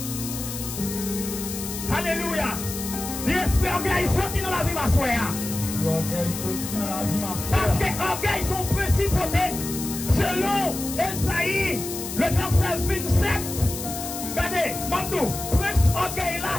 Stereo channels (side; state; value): left; noise; hiss, 7 dB below the sound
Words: Alléluia. L'esprit orgueil sorti dans la vie, ma soeur. Parce que orgueil sont principautés. Selon Esaïe, le verset 27. Regardez, Mandou, prince orgueil là,